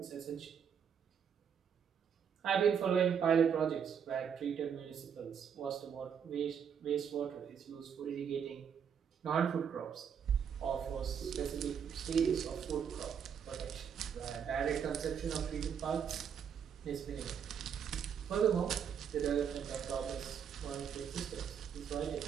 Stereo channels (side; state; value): left; quieter; 7.7 dB